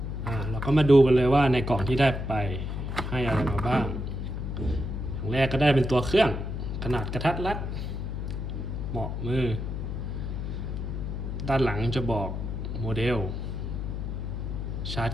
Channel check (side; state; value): left; noise; hum, 4 dB below the sound